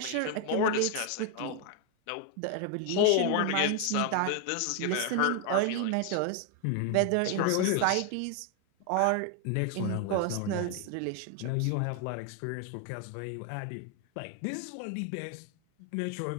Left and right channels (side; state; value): both; different; correlation 0.01